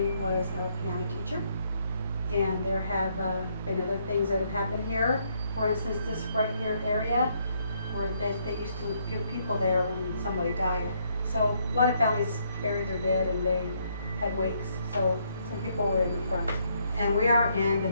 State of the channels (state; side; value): inverted; both; correlation -0.72